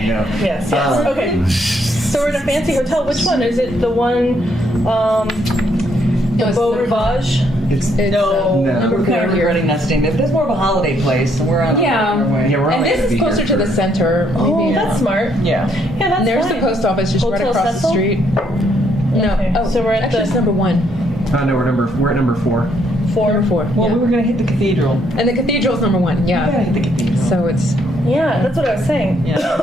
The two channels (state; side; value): normal; both; correlation 0.71